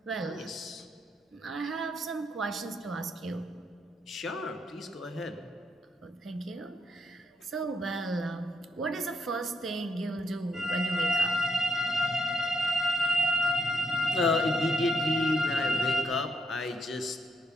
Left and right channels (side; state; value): both; normal; correlation 0.75